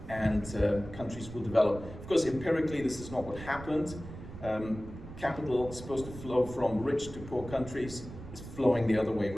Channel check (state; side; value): noise; right; rumble, 13 dB below the sound